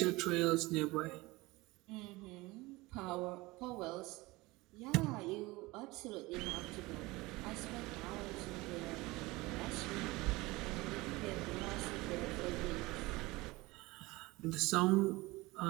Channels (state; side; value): quieter; left; 21.6 dB